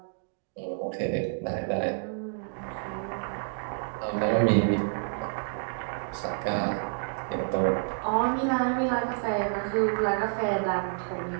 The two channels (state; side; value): silent; left; digital silence